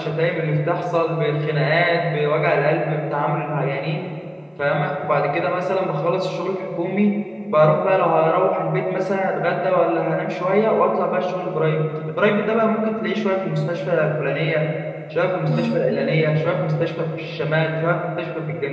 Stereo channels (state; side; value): identical; both; correlation 1.00